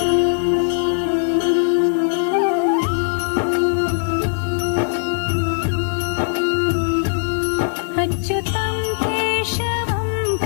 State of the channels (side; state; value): right; silent; 66 dB below the other